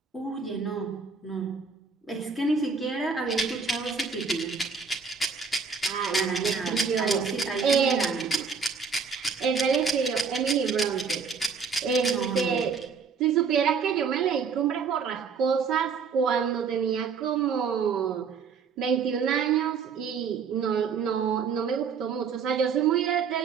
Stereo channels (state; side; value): quieter; left; 5.6 dB